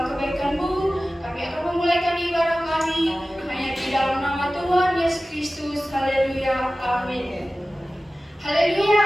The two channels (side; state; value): both; normal; correlation 0.96